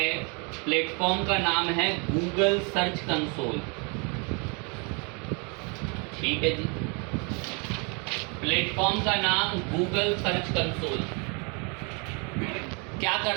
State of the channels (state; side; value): quieter; left; 33.6 dB